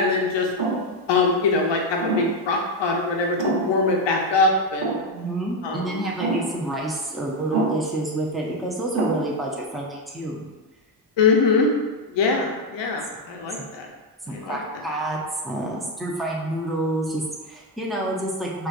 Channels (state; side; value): normal; both; correlation 0.06